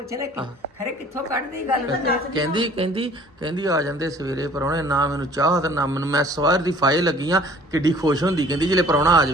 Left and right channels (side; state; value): both; normal; correlation 0.52